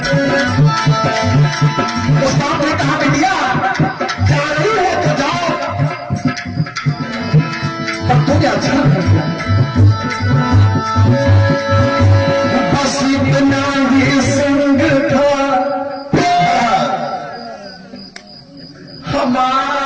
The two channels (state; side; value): identical; both; correlation 1.00